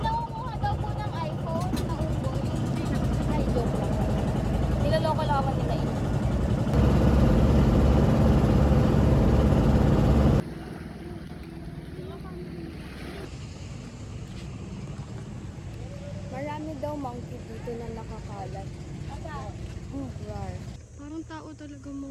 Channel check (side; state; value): both; identical; correlation 1.00